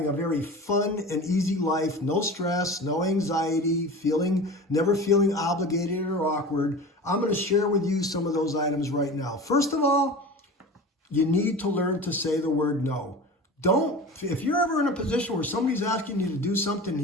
a very fun and easy life, no stress, no anxiety, never feeling obligated or awkward. I'm going to share with you some of those items right now. First of all, you need to learn to say the word no. If you're ever in a position where somebody's asking you to do something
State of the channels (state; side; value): normal; both; correlation 0.34